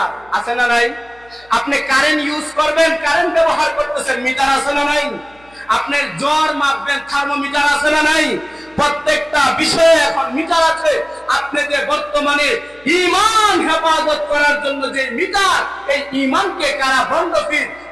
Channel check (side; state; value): left; noise; hum, 30 dB below the sound